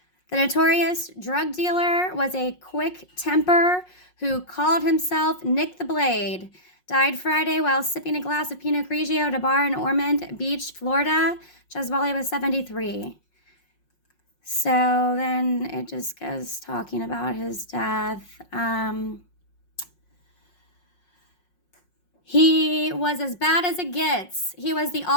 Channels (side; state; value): right; late; 5.5 ms